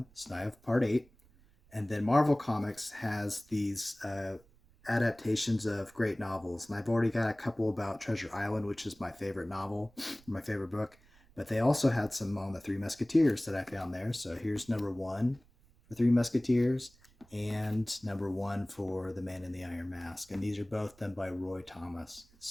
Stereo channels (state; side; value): noise; right; rumble, 28 dB below the sound